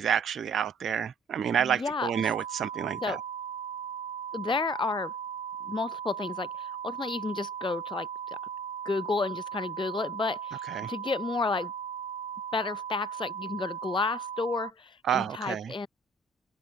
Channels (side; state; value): both; normal; correlation 0.53